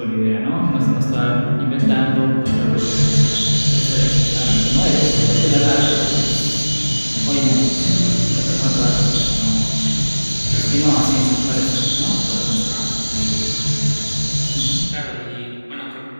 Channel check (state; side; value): inverted; both; correlation -1.00